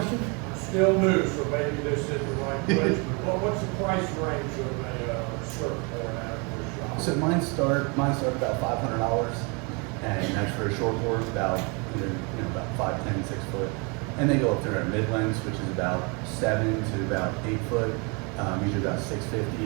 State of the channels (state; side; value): quieter; left; 31.8 dB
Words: Still new, so maybe this is the right place, but what's the price range of a surfboard out of your shop? So mine start about $500, and that's for a short board, about either, you know, about 5'10", 6 foot, and they go up through our mid lengths, which is about 7 to about 8 foot, usually about 650,